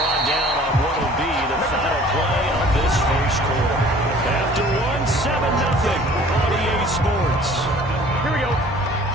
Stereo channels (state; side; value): normal; both; correlation 0.50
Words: down on what will be the final play of this first quarter. After 1-7-0 on EA Sports. Here we go.